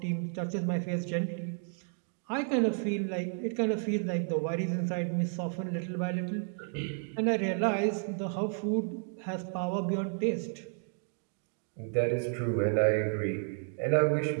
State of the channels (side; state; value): left; silent; 56 dB below the other